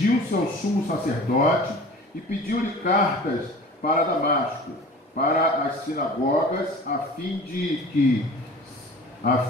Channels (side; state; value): both; normal; correlation 0.41